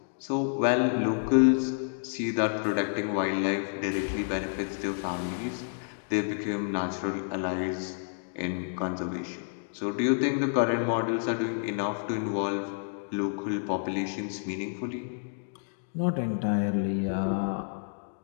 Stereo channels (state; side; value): silent; right; digital silence